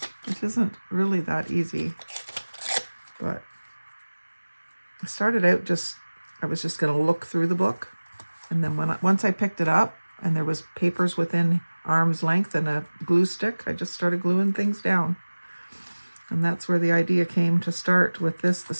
which isn't really that easy, but I started out I was just going to look through the book. And then once I picked it up and there was papers within arm's length and a glue stick, I just started gluing things down. And that's where the idea came to start with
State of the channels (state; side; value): inverted; both; correlation -1.00